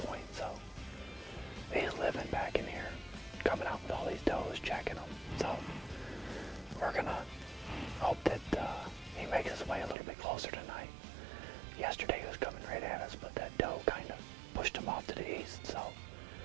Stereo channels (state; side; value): drops out; left; at 10.0 s